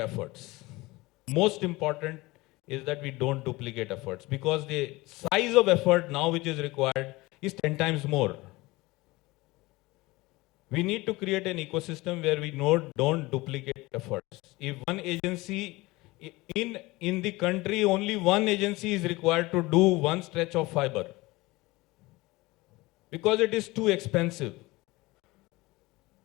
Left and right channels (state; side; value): quieter; right; 21.4 dB